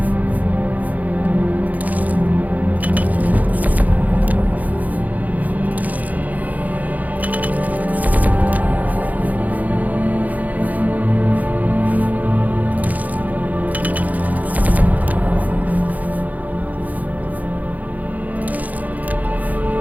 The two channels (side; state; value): left; late; 0.078 ms